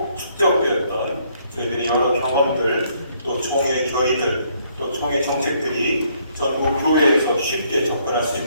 저희들이 여러 경험들 또 총회 결의들 또 총회 정책들이 전국 교회에서 쉽게 접근할 수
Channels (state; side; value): inverted; both; correlation -0.68